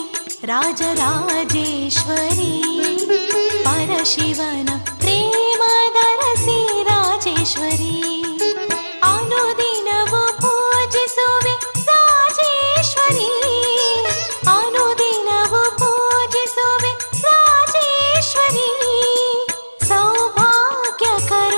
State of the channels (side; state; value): both; inverted; correlation -1.00